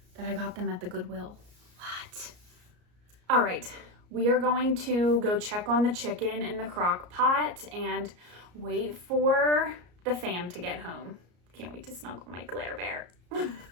that I got them at the Goodwill. What? All right, we are going to go check on the chicken in the crock pot and wait for the fam to get home. Can't wait to snuggle my Glare Bear.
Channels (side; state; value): left; late; 34 ms